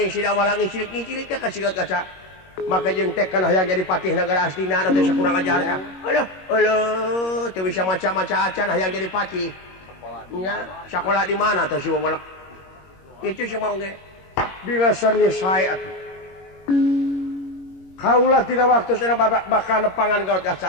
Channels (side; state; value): right; late; 21 ms